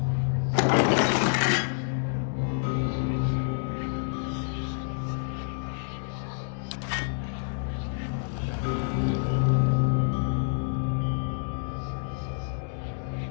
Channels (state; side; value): silent; right; digital silence